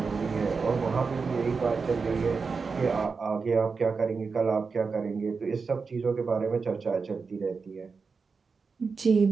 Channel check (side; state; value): left; quieter; 4.9 dB